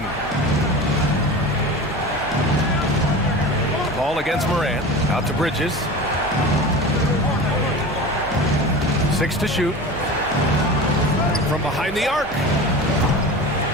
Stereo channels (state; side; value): normal; both; correlation 0.32